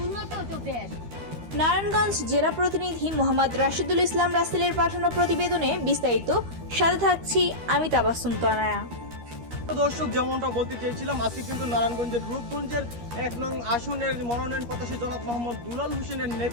উন্নত তো দেশ। নারায়ণগঞ্জ জেলা প্রতিনিধি মোহাম্মদ রাশিদুল ইসলাম রাসেলের পাঠানো প্রতিবেদনে বিস্তারিত। সাথে থাকছি আমি তাবাসসুম তনয়া। দর্শক, যেমনটা বলতে চেয়েছিলাম, আজকে কিন্তু নারায়ণগঞ্জের রূপগঞ্জের ১ নং আসনের মনোনয়ন প্রত্যাশী জনাব মোহাম্মদ দুলাল হোসেনের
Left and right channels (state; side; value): late; left; 13 ms